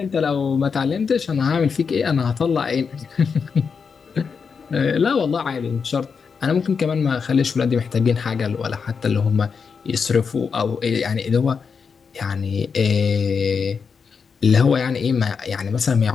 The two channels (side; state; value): right; quieter; 5.8 dB